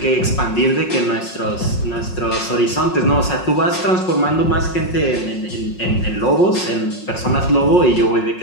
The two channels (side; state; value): right; late; 5.5 ms